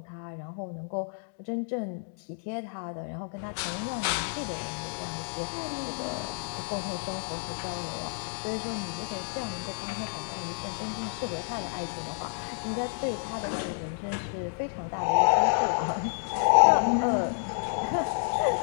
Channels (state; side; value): silent; right; digital silence